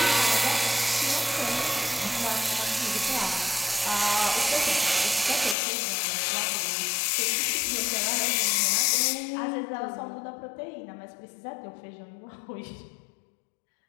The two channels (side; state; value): right; drops out; at 5.6 s